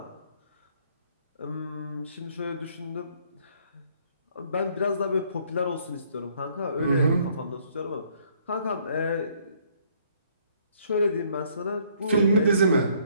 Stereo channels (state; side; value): inverted; both; correlation -0.64